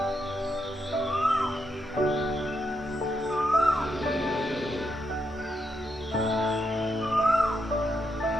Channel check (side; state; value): both; normal; correlation 0.81